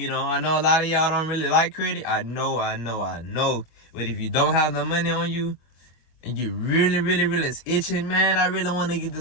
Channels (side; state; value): right; late; 25 ms